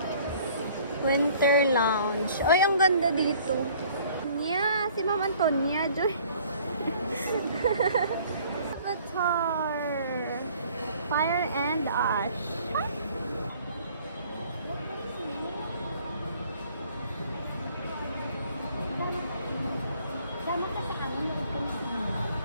Winter Lounge. Ay, ang ganda dito. Nya, si Ma'am Antonia, Joy. Avatar. Fire and Ash.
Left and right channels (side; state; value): both; inverted; correlation -0.55